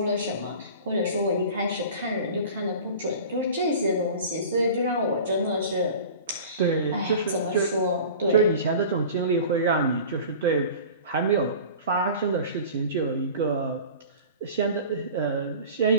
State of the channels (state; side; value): inverted; both; correlation -0.39